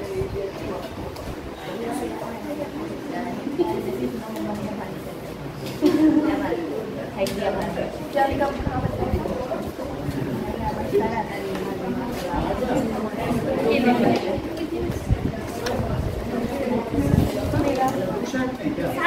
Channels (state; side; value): identical; both; correlation 1.00